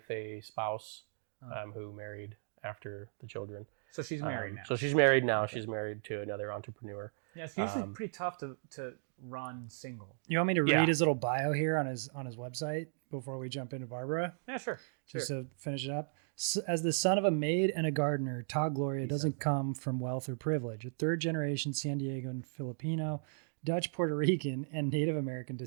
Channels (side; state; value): left; silent; digital silence